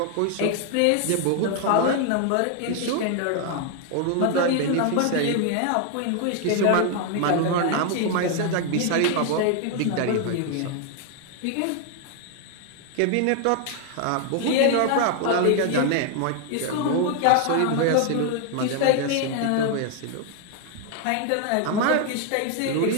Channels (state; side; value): different; both; correlation 0.00